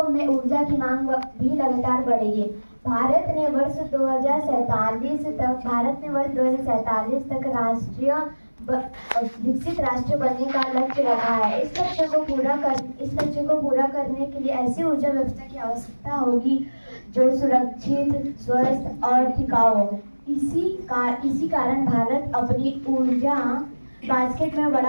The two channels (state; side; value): inverted; both; correlation -1.00